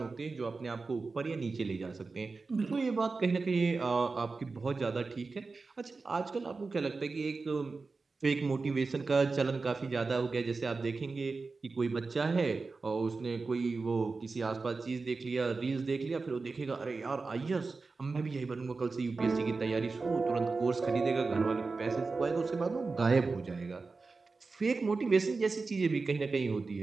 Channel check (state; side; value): quieter; left; 4.1 dB